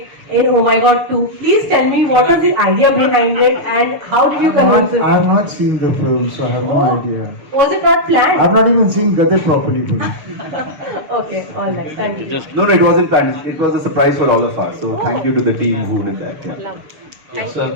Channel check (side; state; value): left; late; 6.8 ms